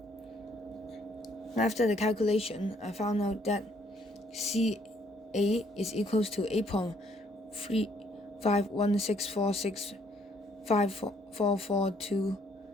After the calculation, I found out that CA is equals to 8.35164654442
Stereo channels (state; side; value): normal; both; correlation 0.66